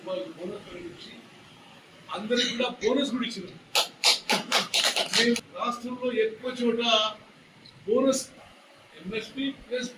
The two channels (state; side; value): identical; both; correlation 1.00